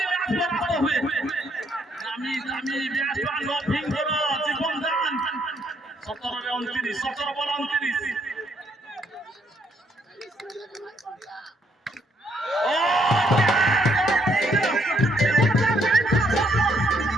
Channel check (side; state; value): both; normal; correlation 0.71